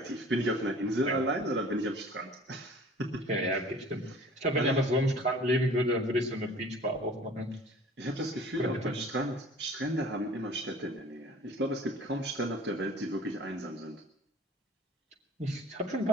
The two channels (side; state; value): both; normal; correlation 0.47